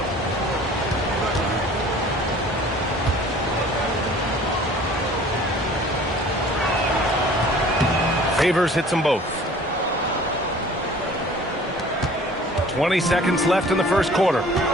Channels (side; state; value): both; normal; correlation 0.48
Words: Favors hits them both. 20 seconds left in the first quarter.